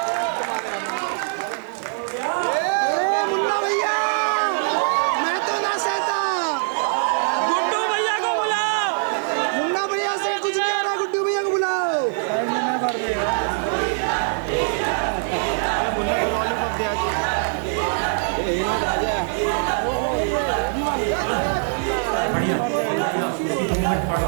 अरे मुन्ना भैया, मैं तो ना सहता। गुड्डू भैया को बुलाओ। मुन्ना भैया से कुछ नहीं आ रहा, गुड्डू भैया को बुलाओ।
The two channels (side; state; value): left; silent; digital silence